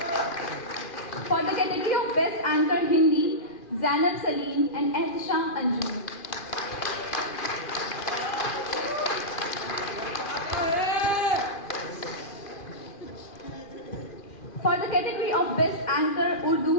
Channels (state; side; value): late; right; 2.4 ms